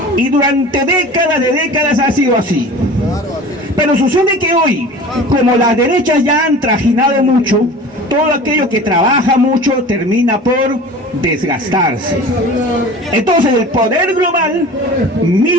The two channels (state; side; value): normal; both; correlation 0.39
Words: Y durante décadas ha sido así. Pero sucede que hoy, como las derechas ya han trajinado mucho, todo aquello que trabaja mucho termina por desgastarse. Entonces el poder global